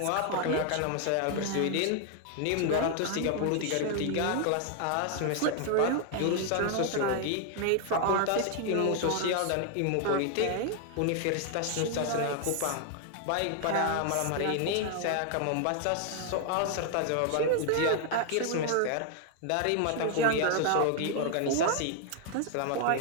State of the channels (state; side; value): different; both; correlation 0.00